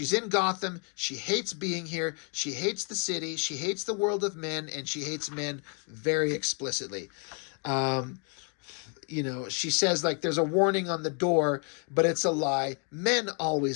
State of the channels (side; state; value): right; quieter; 38.2 dB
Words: in Gotham, she hates being here, she hates the city, she hates the world of men, and she hates men very explicitly. She says, like, there's a warning on the door, but it's a lie. Men